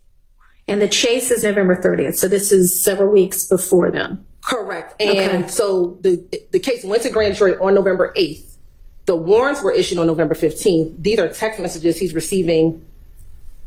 and the chase is November 30th. So this is several weeks before then. Correct. And so the case went to grand jury on November 8th. The warrants were issued on November 15th. These are text messages he's receiving.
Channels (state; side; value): identical; both; correlation 1.00